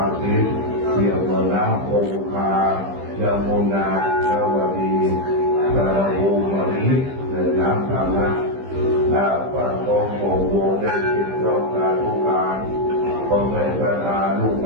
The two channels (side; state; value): left; late; 15 ms